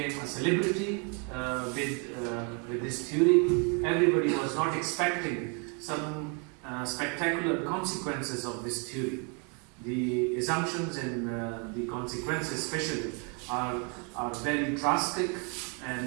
a celebrity with this theory. Everybody was not expecting some spectacular consequences of this theory. The assumptions and the consequences especially are very drastic,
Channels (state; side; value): quieter; left; 36.1 dB